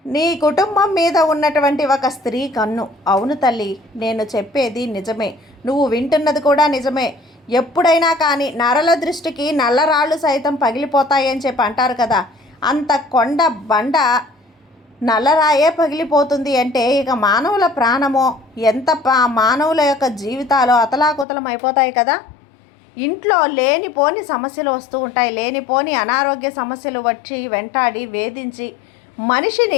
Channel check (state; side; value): drops out; right; at 21.2 s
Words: నీ కుటుంబం మీద ఉన్నటువంటి ఒక స్త్రీ కన్ను. అవును తల్లి, నేను చెప్పేది నిజమే, నువ్వు వింటున్నది కూడా నిజమే. ఎప్పుడైనా కానీ నరల దృష్టికి నల్లరాళ్ళు సైతం పగిలిపోతాయని చెప్పి అంటారు కదా. అంత కొండ బండ నల్లరాయే పగిలిపోతుంది అంటే ఇక మానవుల ప్రాణమో, ఎంత మానవుల యొక్క జీవితాలు అతలాకుతలం అయిపోతాయి కదా. ఇంట్లో లేనిపోని సమస్యలు వస్తూ ఉంటాయి. లేనిపోని అనారోగ్య సమస్యలు వచ్చి వెంటాడి వేధించి